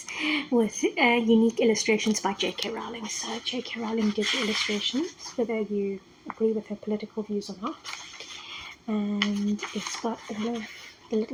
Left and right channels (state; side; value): identical; both; correlation 1.00